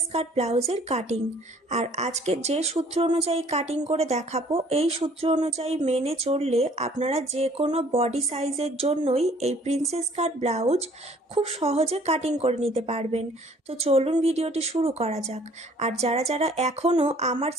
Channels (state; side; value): normal; both; correlation 0.56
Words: কাট ব্লাউজের কাটিং। আর আজকে যে সূত্র অনুযায়ী কাটিং করে দেখাবো, এই সূত্র অনুযায়ী মেনে চললে আপনারা যে কোনো বডি সাইজের জন্যই এই প্রিন্সেস কাট ব্লাউজ খুব সহজে কাটিং করে নিতে পারবেন। তো চলুন ভিডিওটি শুরু করা যাক। আর যারা যারা এখনও আমার